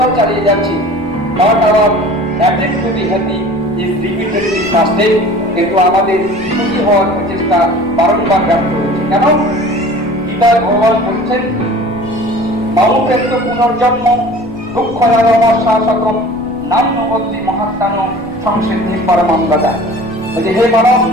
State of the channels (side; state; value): left; noise; rumble, 18 dB below the sound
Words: চালিয়ে যাচ্ছি। Not our attempt two be happy is repeatedly fasted. কিন্তু আমাদের সুখী হওয়ার প্রচেষ্টা বারংবার ব্যর্থ হচ্ছে। কেন? গীতায় ভগবান বলছেন, মামুপেত্য পুনর্জন্ম দুঃখ শাসকম নান্যবতী মহাত্মানো সংসিদ্ধি পরমাঙ্গদা। বলছে, হে মানব,